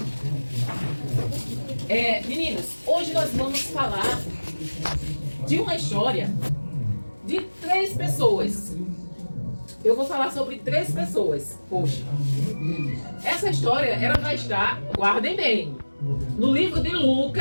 Meninos, hoje nós vamos falar de uma história de 3 pessoas. Eu vou falar sobre 3 pessoas hoje. Essa história, ela vai estar, guardem bem, no livro de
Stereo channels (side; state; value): both; inverted; correlation -1.00